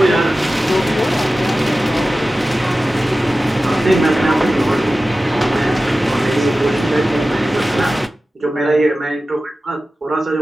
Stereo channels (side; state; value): both; normal; correlation 0.95